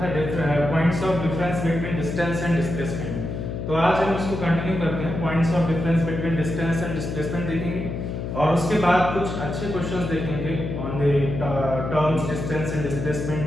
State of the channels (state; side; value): noise; left; hum, 5 dB below the sound